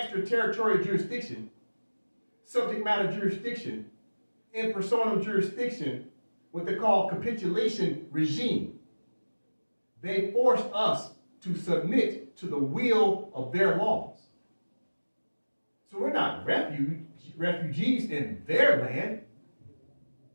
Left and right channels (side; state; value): both; inverted; correlation -1.00